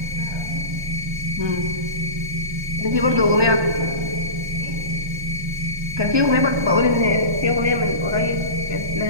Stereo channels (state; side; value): late; left; 1.2 ms